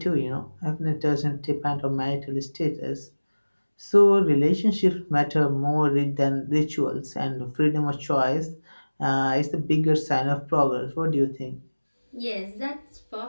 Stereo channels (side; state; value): both; inverted; correlation -1.00